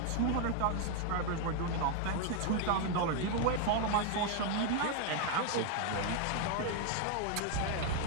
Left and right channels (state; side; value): different; both; correlation 0.01